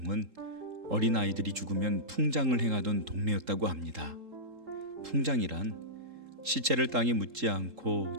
어린아이들이 죽으면 풍장을 행하던 동네였다고 합니다. 풍장이란 시체를 땅에 묻지 않고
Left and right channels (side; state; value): left; late; 3.7 ms